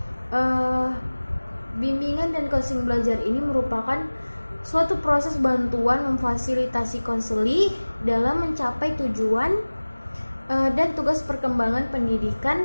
bimbingan dan konseling belajar ini merupakan suatu proses bantuan memfasilitasi konseli dalam mencapai tujuan dan tugas perkembangan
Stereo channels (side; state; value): both; inverted; correlation -1.00